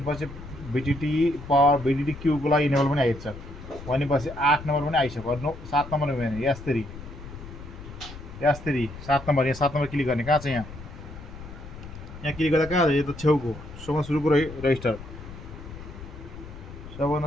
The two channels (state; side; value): noise; left; rumble, 13 dB below the sound